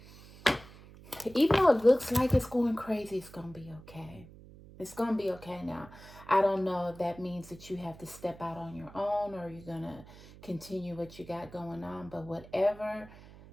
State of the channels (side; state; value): right; noise; hum, 19 dB below the sound